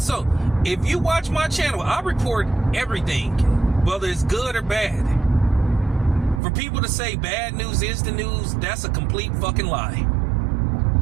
If you watch my channel, I report everything, whether it's good or bad. For people to say bad news is the news, that's a complete fucking lie.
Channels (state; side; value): drops out; left; at 6.4 s